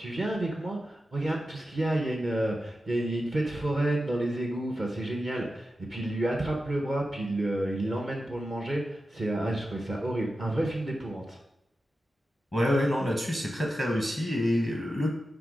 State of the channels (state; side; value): normal; both; correlation 0.91